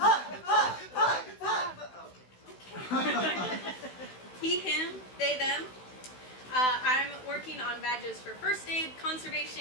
Puck! Puck! Puck! He, him, they, them. I'm working on badges for first aid,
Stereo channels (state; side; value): late; right; 16 ms